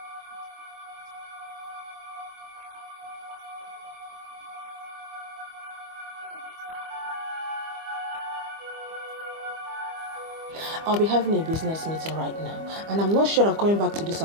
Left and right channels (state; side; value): late; left; 25 ms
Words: I don't have time to waste. I have lost a lot of years. Me, I need to start living life. I need it. You know what? I'll be having a business meeting right now, and I'm not sure of coming back to this